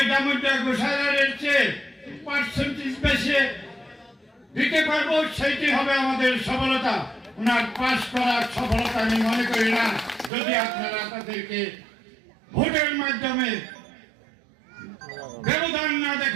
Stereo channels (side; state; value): left; drops out; at 10.3 s